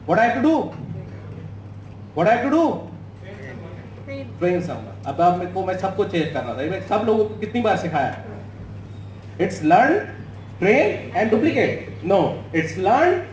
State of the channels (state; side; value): identical; both; correlation 1.00